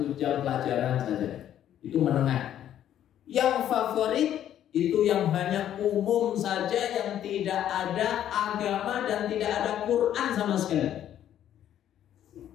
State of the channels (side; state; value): right; quieter; 10.9 dB